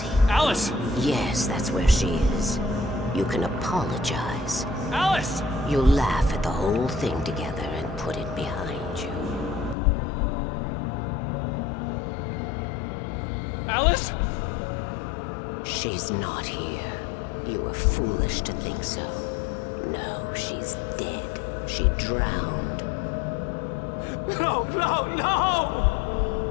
Alice! Yes, that's where she is. You can apologize. Alice! You'll laugh at the whole thing together and put it behind you. Alice? She's not here. You were foolish to think so. No, she's dead. She drowned. No, no, no!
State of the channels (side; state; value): right; drops out; at 9.8 s